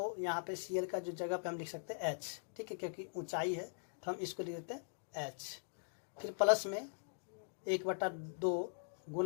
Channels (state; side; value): silent; right; digital silence